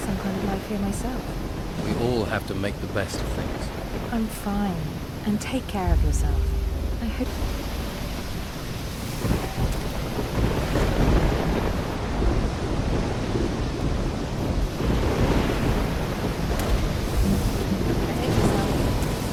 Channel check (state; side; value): identical; both; correlation 1.00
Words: some kind of life here myself. We all have to make the best of things. I'm fine. And take care of yourself. I hope...